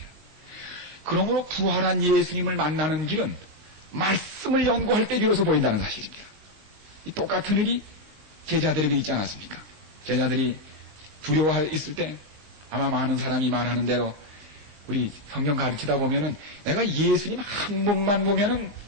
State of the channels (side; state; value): left; late; 20 ms